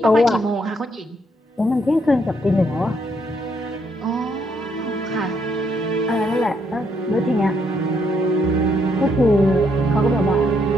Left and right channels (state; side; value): normal; both; correlation 0.73